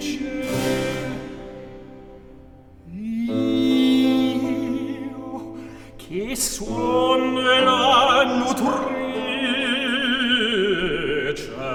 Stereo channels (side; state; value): both; identical; correlation 1.00